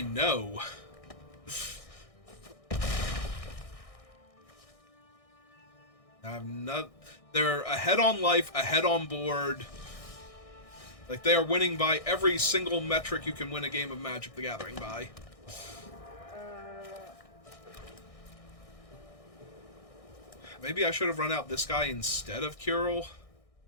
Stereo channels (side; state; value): right; late; 1.6 ms